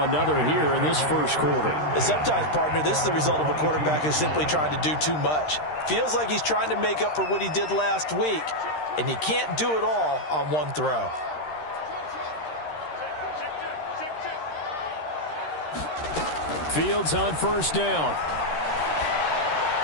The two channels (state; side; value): late; right; 13 ms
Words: another here in this first quarter. And sometimes, partner, this is the result of a quarterback who's simply trying to do too much. Feels like he's trying to make up for what he did last week, and you can't do it all on one throw. Fields on first down.